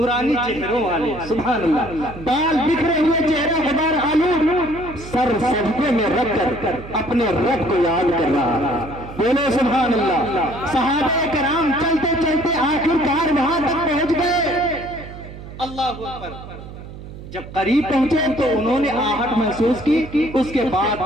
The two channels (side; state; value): right; noise; hum, 14 dB below the sound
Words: چہروں والے، سبحان اللہ، بال بکھرے ہوئے، چہرہ غبار آلود، سر سجدے میں رکھ کر اپنے رب کو یاد کر رہا. بولو سبحان اللہ. صحابہ کرام چلتے چلتے آخرکار وہاں تک پہنچ گئے. اللہ اکبر. جب قریب پہنچے تو انہوں نے آہٹ محسوس کی، اس کے بعد